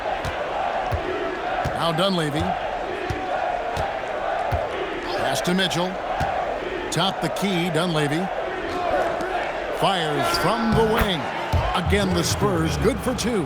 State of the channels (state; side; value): identical; both; correlation 1.00